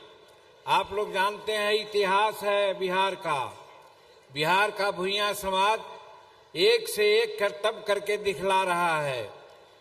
आप लोग जानते हैं इतिहास है बिहार का। बिहार का भुइयां समाज एक से एक करतब करके दिखला रहा है।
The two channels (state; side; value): identical; both; correlation 1.00